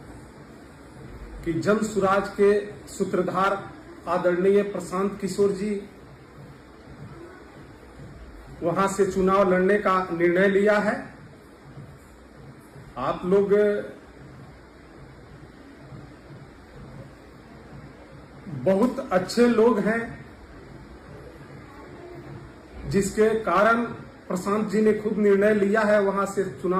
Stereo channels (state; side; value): identical; both; correlation 1.00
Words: कि जन सुराज के सूत्रधार आदरणीय प्रशांत किशोर जी वहां से चुनाव लड़ने का निर्णय लिया है। आप लोग बहुत अच्छे लोग हैं, जिसके कारण प्रशांत जी ने खुद निर्णय लिया है वहां से